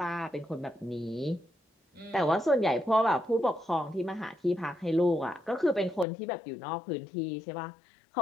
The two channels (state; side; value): drops out; right; at 6.1 s